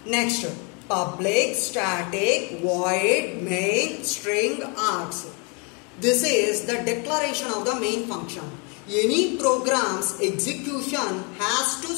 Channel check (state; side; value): quieter; right; 33.7 dB